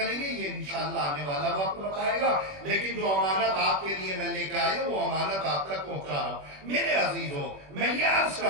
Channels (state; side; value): late; left; 21 ms